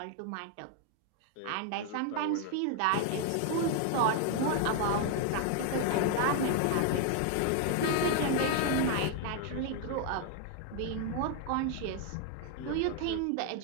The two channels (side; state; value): both; different; correlation 0.00